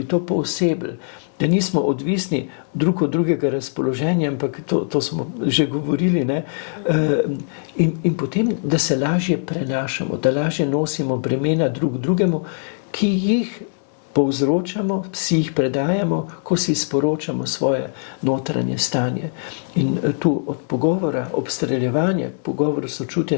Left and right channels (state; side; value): silent; right; digital silence